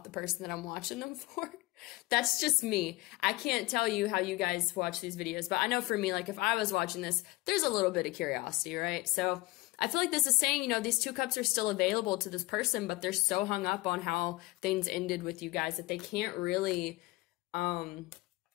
the person that I'm watching them for. That's just me. I can't tell you how you guys watch these videos, but I know for me, like if I was watching this, there's a little bit of curiosity, right? So I feel like this is saying, you know, these two cups are still available to this person, but they're so hung up on how things ended with you guys that they can't really,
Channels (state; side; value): quieter; right; 20.5 dB